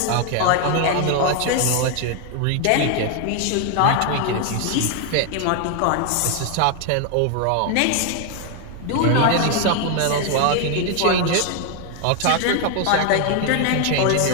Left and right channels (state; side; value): different; both; correlation 0.00